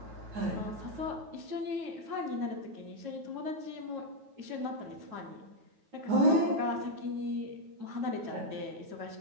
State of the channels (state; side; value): late; left; 9.3 ms